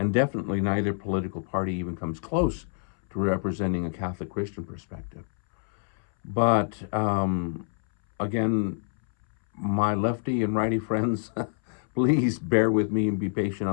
definitely neither political party even comes close to representing a Catholic Christian perspective. But again, my lefty and righty friends, please bear with me and be patient.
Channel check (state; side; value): silent; right; 60 dB below the other